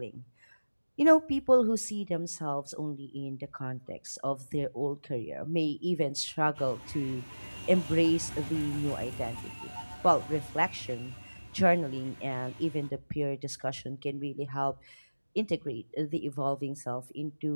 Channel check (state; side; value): inverted; both; correlation -1.00